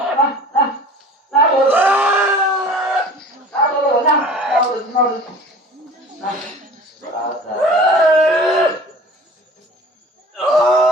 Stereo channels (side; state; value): both; normal; correlation 0.43